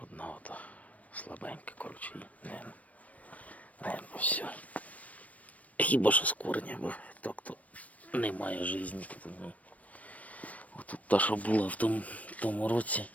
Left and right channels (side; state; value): right; late; 0.068 ms